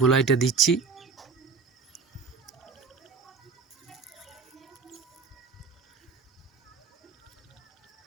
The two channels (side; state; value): left; quieter; 4.9 dB